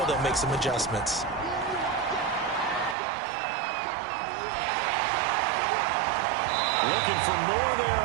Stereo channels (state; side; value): drops out; left; at 3.0 s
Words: they'll make some adjustments. Looking for more there